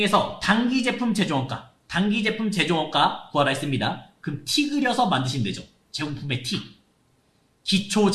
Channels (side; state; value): both; identical; correlation 1.00